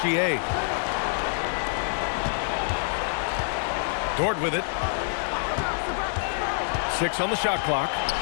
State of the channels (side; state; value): right; silent; digital silence